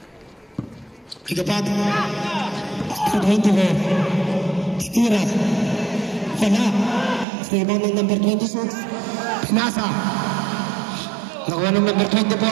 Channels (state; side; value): drops out; left; at 7.2 s